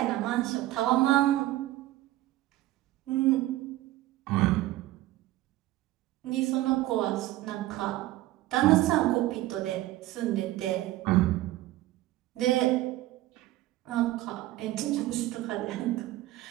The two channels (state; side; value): quieter; left; 16.1 dB